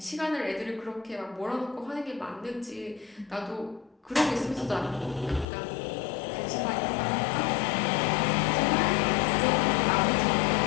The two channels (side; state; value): right; drops out; at 5.5 s